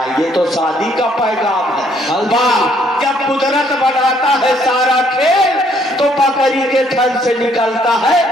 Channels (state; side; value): normal; both; correlation 0.67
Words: ये तो शादी का पैगाम है। वाह जब कुदरत बनाता है सारा खेल तो बकरी के थन से निकलता है।